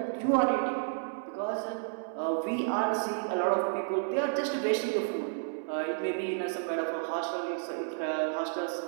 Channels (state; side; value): silent; left; 57 dB below the other